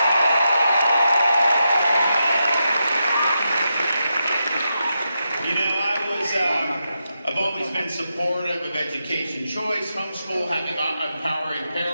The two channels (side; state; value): both; inverted; correlation -0.86